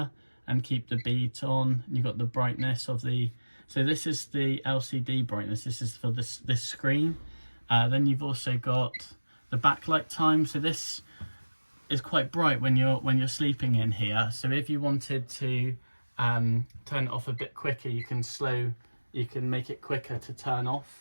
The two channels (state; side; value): inverted; both; correlation -1.00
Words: and keep the beat on. And you've got the brightness of the, so this is the LCD brightness, this is for this screen. Then you've also got the backlight time, so this is quite bright when you're sleeping in here. So if you wanted to turn it off a bit quicker, you can make it quicker to turn